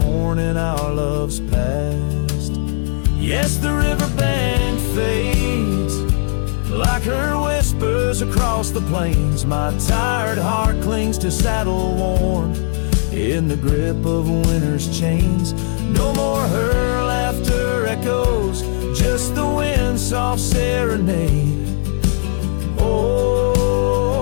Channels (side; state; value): right; silent; digital silence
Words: our love's past. Yes, the river band fades, like her whispers across the plains. My tired heart clings to saddle worn, in the grip of winter's chains. No more her laughter echoes, just the wind's soft serenade.